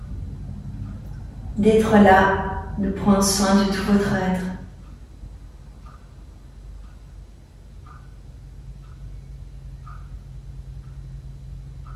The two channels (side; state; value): both; identical; correlation 1.00